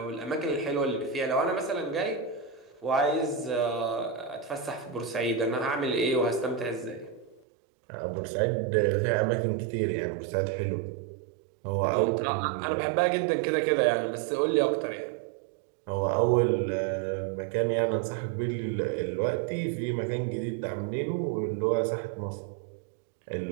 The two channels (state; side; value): drops out; left; at 7.4 s